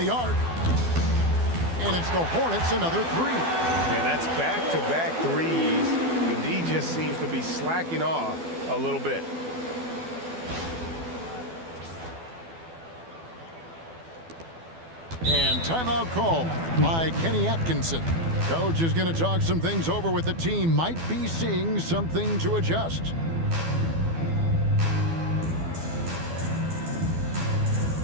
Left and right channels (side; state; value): left; late; 12 ms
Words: arc. And it's the Hornets, another 3. And that's back-to-back threes. he just seems to be slacking off a little bit. And timeout call by Kenny Atkinson. Coach is going to talk some things over with the team. Might be seeing something to adjust.